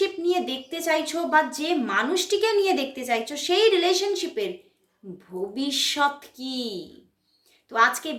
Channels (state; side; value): identical; both; correlation 1.00